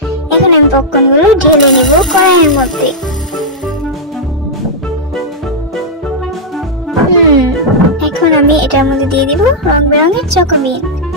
এখন আমি পপকর্ন গুলো ঢেলে নিব কড়াইয়ের মধ্যে। এখন আমি এটার মধ্যে দিয়ে দিব রং বেরঙের চকোবিন।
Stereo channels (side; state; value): both; normal; correlation -0.07